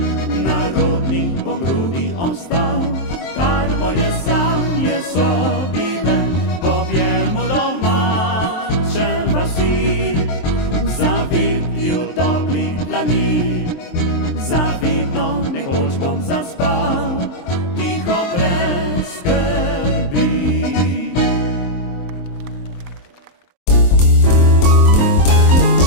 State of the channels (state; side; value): late; right; 23 ms